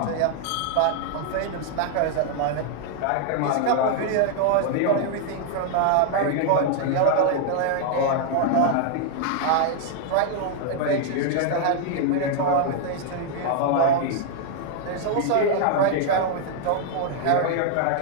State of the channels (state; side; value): different; both; correlation -0.01